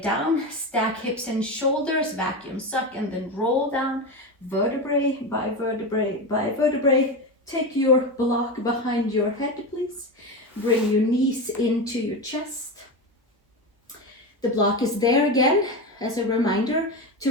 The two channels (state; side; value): normal; both; correlation 0.19